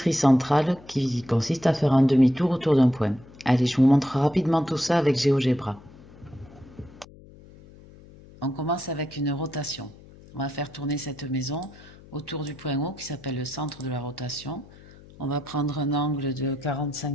centrale qui consiste à faire un demi-tour autour d'un point. Allez, je vous montre rapidement tout ça avec GeoGebra. On commence avec une rotation. On va faire tourner cette maison autour du point haut qui s'appelle le centre de la rotation. On va prendre un angle de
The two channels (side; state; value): left; noise; hum, 22 dB below the sound